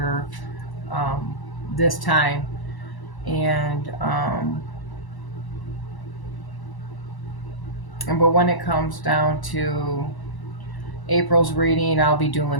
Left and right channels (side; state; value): right; late; 1.0 ms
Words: um, this time, and but when it comes down to April's reading, I'll be